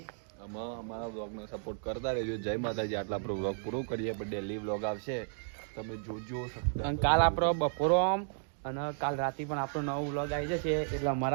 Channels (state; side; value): silent; left; digital silence